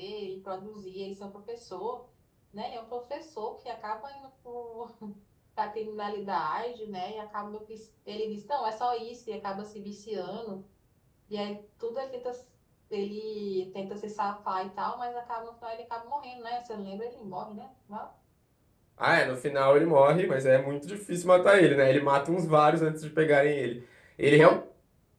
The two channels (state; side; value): identical; both; correlation 1.00